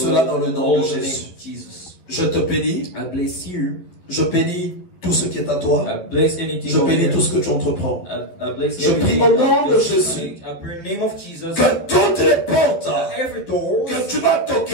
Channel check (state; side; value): late; right; 11 ms